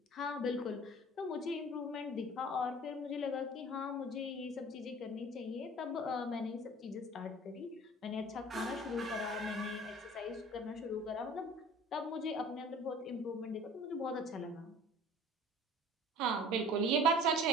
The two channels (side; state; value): both; normal; correlation 0.46